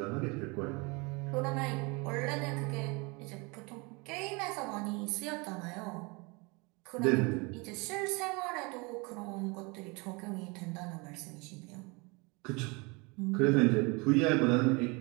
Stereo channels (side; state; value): left; quieter; 28.3 dB